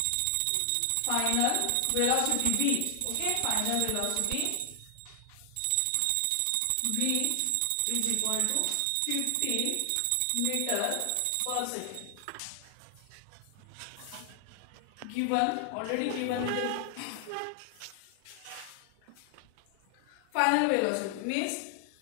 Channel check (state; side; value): different; both; correlation 0.00